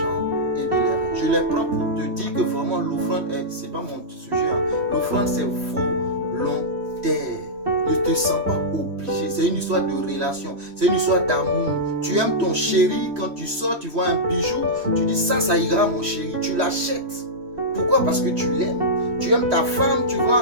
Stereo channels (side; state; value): left; late; 3.1 ms